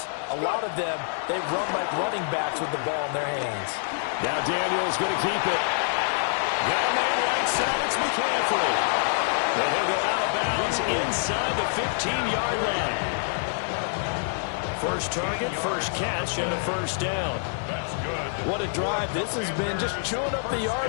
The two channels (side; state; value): right; silent; digital silence